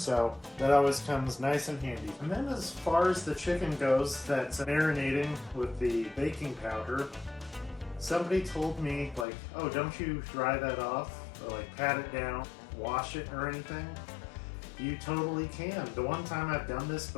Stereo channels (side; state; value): right; drops out; at 9.2 s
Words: that always comes nice and handy. And then as far as the chicken goes that's marinating with the baking powder, somebody told me, like, oh, don't you dry that off or like pat it down, wash it or anything? You totally can. The one time I've done this